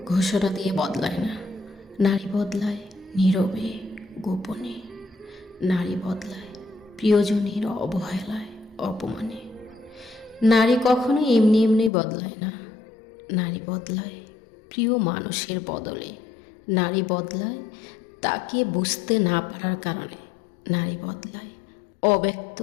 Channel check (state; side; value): drops out; right; at 11.9 s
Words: ঘোষণা দিয়ে বদলায় না। নারী বদলায় নীরবে, গোপনে। নারী বদলায় প্রিয়জনের অবহেলায়, অপমানে। নারী কখনো এমনি এমনি বদলায় না। নারী বদলায় প্রিয় মানুষের বদলে। নারী বদলায় তাকে বুঝতে না পারার কারণে। নারী বদলায় অব্যক্ত